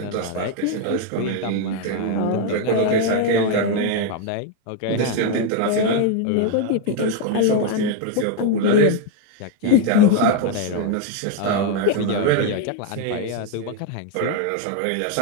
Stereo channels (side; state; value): both; different; correlation 0.01